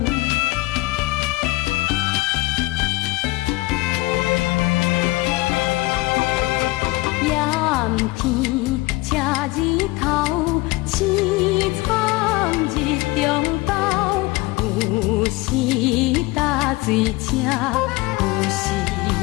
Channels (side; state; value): right; quieter; 21.5 dB